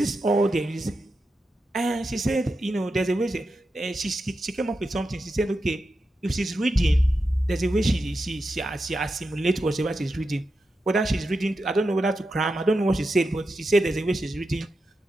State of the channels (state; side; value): normal; both; correlation 0.89